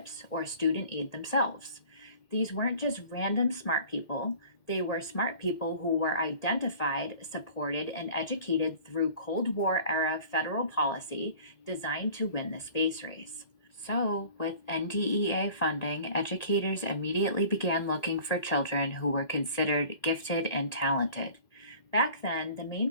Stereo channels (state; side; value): late; right; 1.8 ms